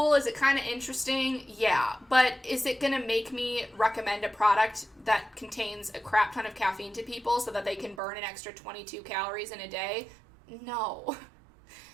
Is it kind of interesting? Yeah. But is it going to make me recommend a product that contains a crap ton of caffeine to people so that they can burn an extra 22 calories in a day? No.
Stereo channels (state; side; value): drops out; left; at 8.0 s